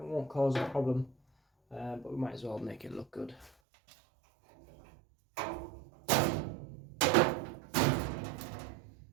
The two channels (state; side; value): drops out; left; at 3.5 s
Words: cause a problem, but we might as well make it look good.